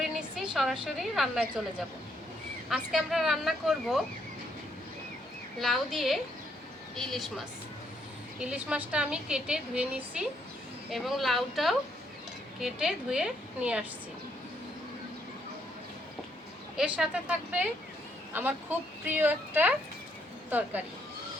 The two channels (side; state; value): both; normal; correlation 0.73